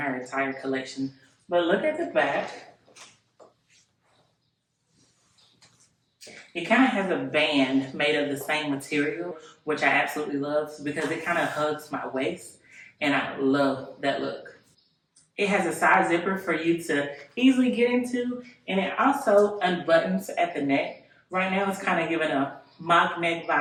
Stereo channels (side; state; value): both; identical; correlation 1.00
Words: entire collection. But look at the back. It kind of has a band made of the same material, which I absolutely love because it kind of hugs my waist, and I love that look. It has a side zipper for you to easily get into, and it also unbuttons at the neck. Right now it's kind of giving a mock neck